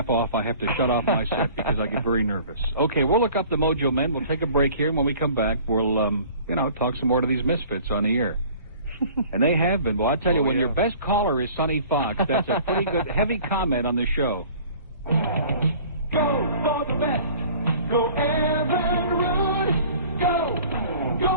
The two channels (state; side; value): inverted; both; correlation -0.48